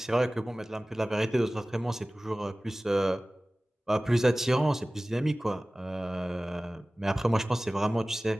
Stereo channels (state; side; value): normal; both; correlation 0.98